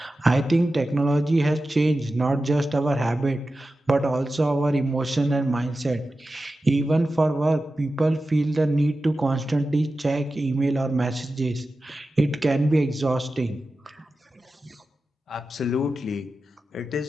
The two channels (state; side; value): normal; both; correlation 0.93